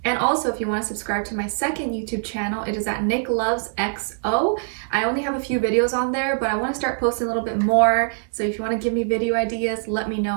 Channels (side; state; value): left; silent; digital silence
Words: And also, if you want to subscribe to my second YouTube channel, it is at Nicloves XO. I only have a few videos on there, but I want to start posting a little bit more. So if you want to give me video ideas, let me